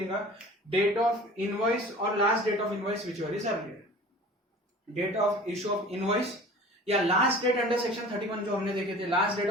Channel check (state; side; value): normal; both; correlation 0.42